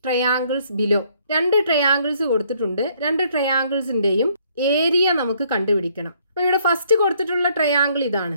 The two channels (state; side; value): inverted; both; correlation -0.66